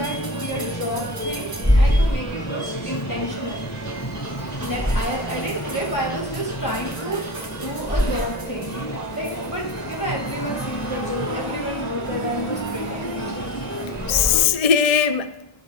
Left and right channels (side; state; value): right; late; 1.7 ms